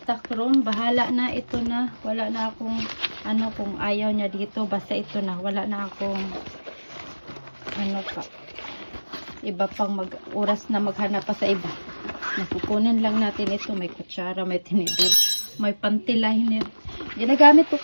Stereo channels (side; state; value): both; inverted; correlation -1.00